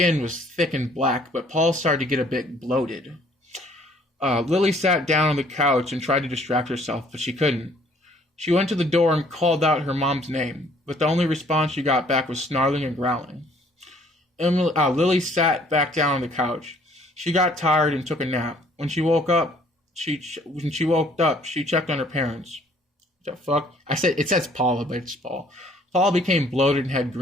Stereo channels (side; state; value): both; normal; correlation 0.60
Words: was thick and black, but Paul started to get a bit bloated. Lily sat down on the couch and tried to distract herself, but she couldn't. She went to the door and called out her mom's name, but the only response she got back was snarling and growling. Lily sat back down on the couch. She got tired and took a nap. When she woke up, she checked on her parents. What the fuck? It says Paula, but it's Paul. Paul became bloated and had